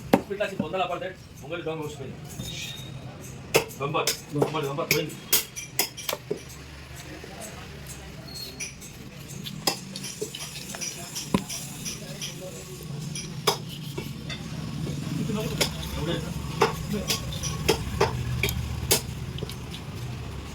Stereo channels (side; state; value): both; identical; correlation 1.00